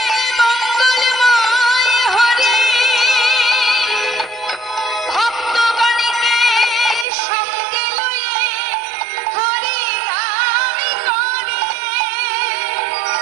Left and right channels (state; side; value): drops out; left; at 7.1 s